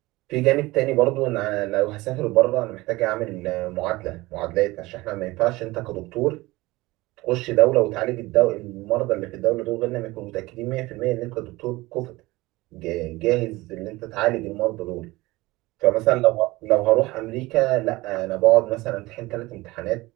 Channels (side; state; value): left; quieter; 20.4 dB